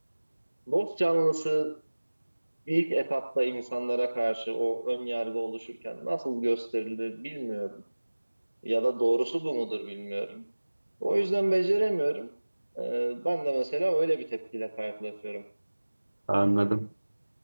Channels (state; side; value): inverted; both; correlation -1.00